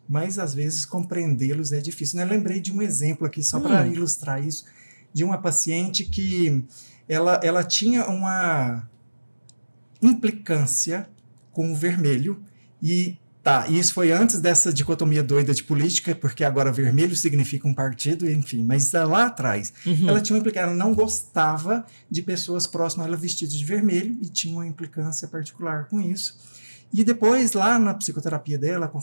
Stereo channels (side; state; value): both; inverted; correlation -1.00